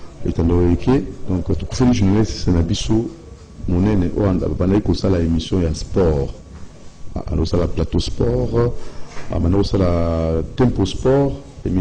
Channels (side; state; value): both; identical; correlation 1.00